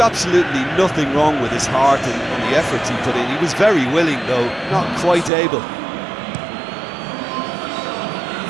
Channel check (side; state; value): left; drops out; at 5.3 s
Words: nothing wrong with his heart and the efforts he put in. He was very willing, though, not quite able.